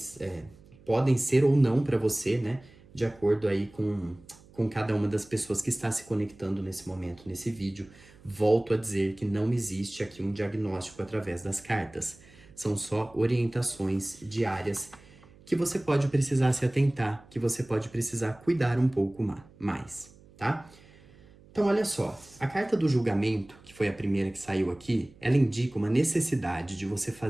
podem ser ou não para você, né? De acordo aí com cada uma das pessoas que está se conectando nesse momento, nesse vídeo. Volto a dizer que não existe aqui um diagnóstico através das cartas. São só orientações diárias que você pode precisar se atentar, que você pode precisar cuidar um pouco mais, tá? Então, olha só, a carta do julgamento, que foi a primeira que saiu aqui, ela indica uma necessidade de você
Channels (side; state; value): right; noise; hum, 25 dB below the sound